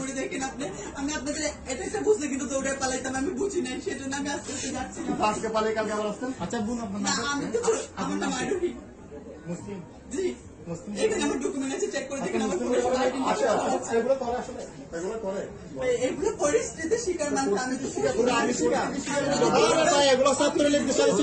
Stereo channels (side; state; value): both; identical; correlation 1.00